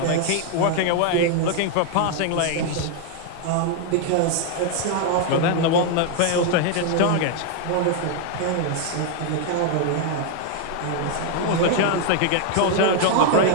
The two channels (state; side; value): different; both; correlation 0.00